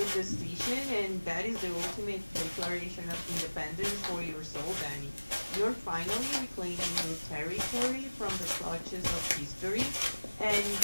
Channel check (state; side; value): inverted; both; correlation -1.00